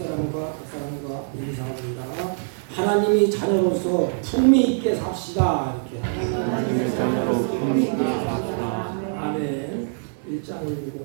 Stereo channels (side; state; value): left; silent; digital silence